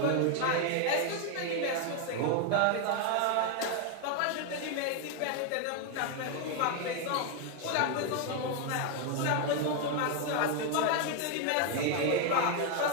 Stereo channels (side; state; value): both; different; correlation 0.01